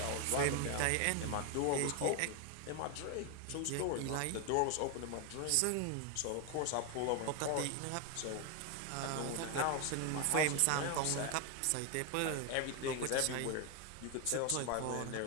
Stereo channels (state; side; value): different; both; correlation 0.01